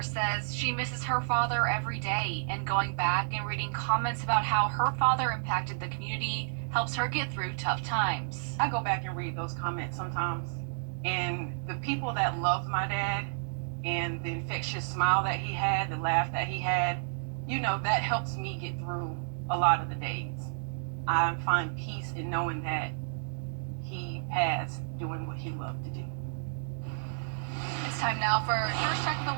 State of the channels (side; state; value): left; silent; digital silence